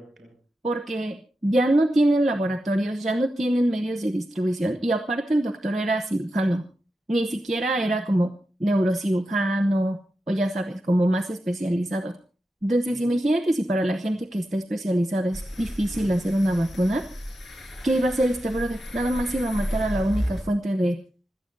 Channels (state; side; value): normal; both; correlation 0.90